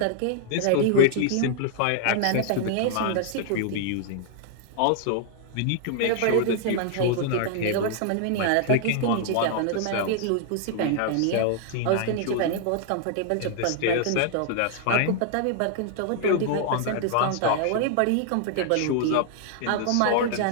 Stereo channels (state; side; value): different; both; correlation -0.01